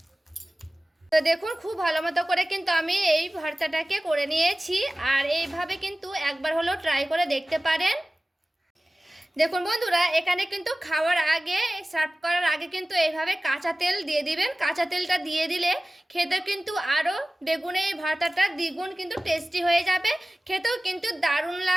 তো দেখুন খুব ভালো মতো করে কিন্তু আমি এই ভর্তাটাকে করে নিয়েছি। আর এইভাবে কিন্তু একবার হলেও ট্রাই করে দেখতে পারেন। দেখুন বন্ধুরা, এখানে কিন্তু খাওয়ার আগে সার্ভ করার আগে কিন্তু এইভাবে কাঁচা তেল দিয়ে দিবেন। কাঁচা তেলটা দিয়ে দিলে খেতে কিন্তু আরও বেগুনের এই ভর্তাটা দ্বিগুণ কিন্তু টেস্টি হয়ে যাবে। খেতেও কিন্তু দারুণ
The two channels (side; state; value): both; normal; correlation 0.97